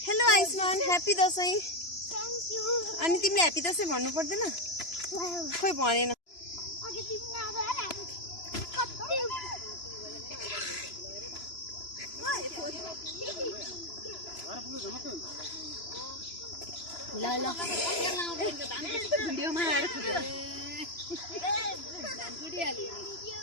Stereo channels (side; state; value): right; late; 3.0 ms